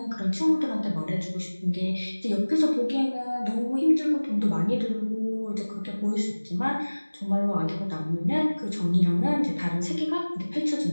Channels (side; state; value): both; inverted; correlation -1.00